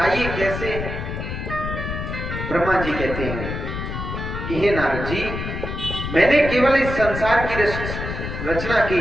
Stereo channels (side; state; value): left; noise; rumble, 5 dB below the sound